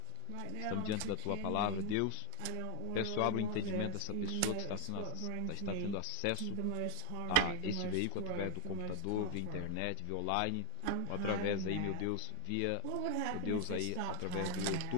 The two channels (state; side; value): different; both; correlation 0.00